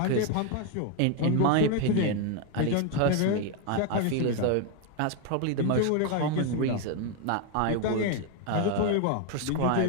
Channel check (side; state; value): both; different; correlation 0.01